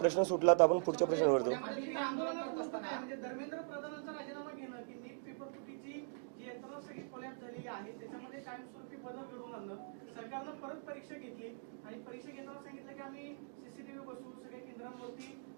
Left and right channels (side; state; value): left; silent; digital silence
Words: सुटला तर आपण पुढच्या प्रश्नावर जाऊ. सरकारनं परत परीक्षा घेतली आणि परीक्षा घेताना सांगितलं की आम्ही सीसीटीव्ही बसवू, सगळ्या केंद्रांवरती